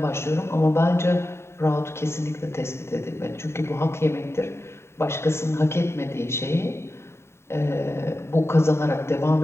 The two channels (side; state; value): right; late; 0.13 ms